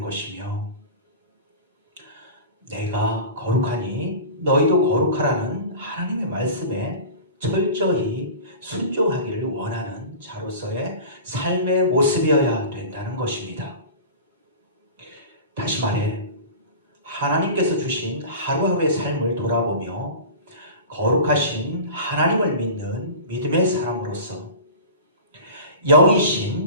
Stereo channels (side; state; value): both; inverted; correlation -0.35